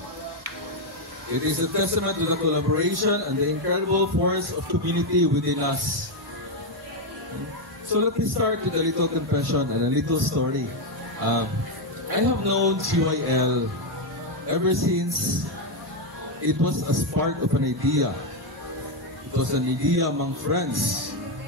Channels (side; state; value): both; normal; correlation 0.04